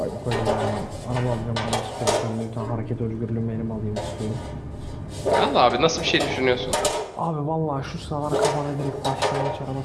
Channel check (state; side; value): identical; both; correlation 1.00